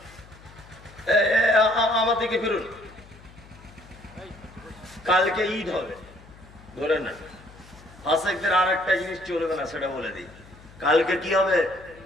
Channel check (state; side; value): noise; left; hum, 22 dB below the sound